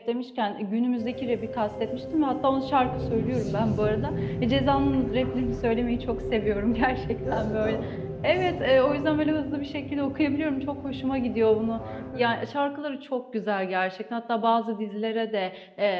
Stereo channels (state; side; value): identical; both; correlation 1.00